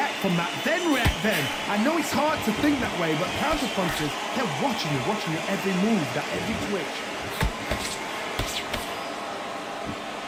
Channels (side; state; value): both; identical; correlation 1.00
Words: from that, then react then. I know it's hard to think that way, but counter punchers, they're watching you every move, that every twitch.